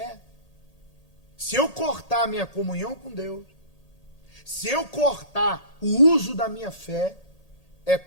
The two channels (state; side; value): late; right; 1.8 ms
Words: Se eu cortar a minha comunhão com Deus, se eu cortar o uso da minha fé, é